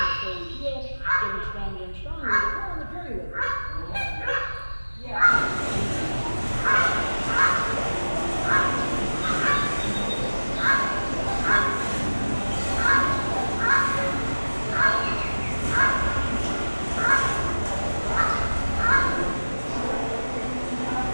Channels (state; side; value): inverted; both; correlation -1.00